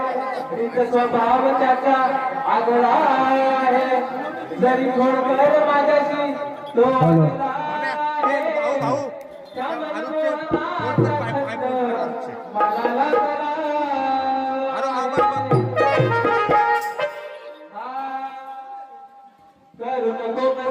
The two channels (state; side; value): identical; both; correlation 1.00